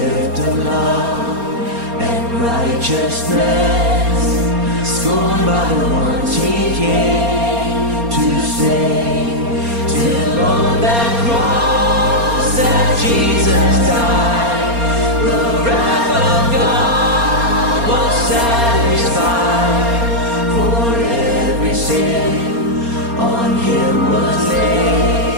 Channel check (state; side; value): late; left; 4.3 ms